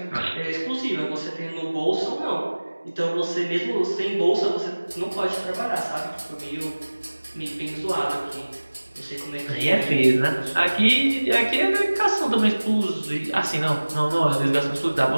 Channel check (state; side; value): inverted; both; correlation -1.00